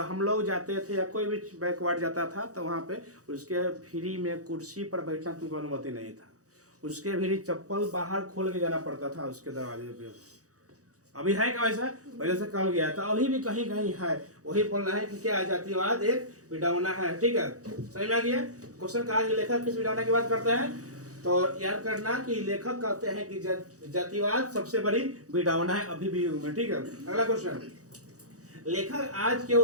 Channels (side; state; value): left; late; 0.66 ms